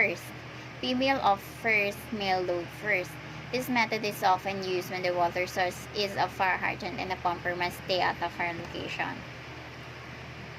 Female off first, male load first. This method is often used when the water source is a fire hydrant and the pumper must stay at the fire location.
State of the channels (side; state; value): both; identical; correlation 1.00